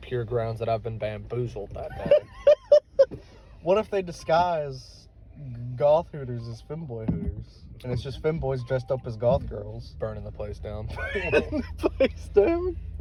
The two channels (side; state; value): both; identical; correlation 1.00